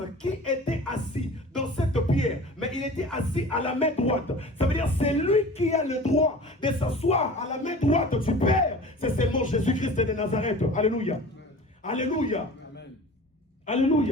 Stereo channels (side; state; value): both; normal; correlation 0.40